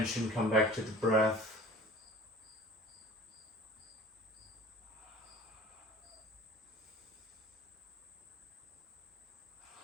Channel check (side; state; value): both; normal; correlation 0.44